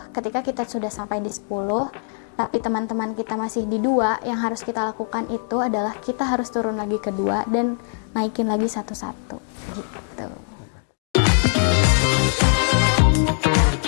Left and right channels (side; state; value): right; silent; 64 dB below the other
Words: ketika kita sudah sampai di 10, tapi teman-teman kita masih di 2, yang harus kita lakukan itu adalah kita harus turun lagi ke 2 dan naikin lagi satu-satu.